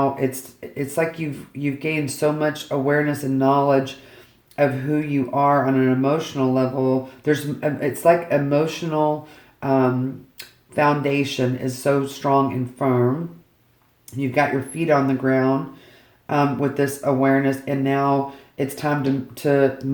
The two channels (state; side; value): identical; both; correlation 1.00